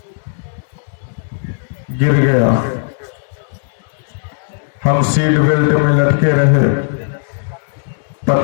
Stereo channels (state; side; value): silent; right; digital silence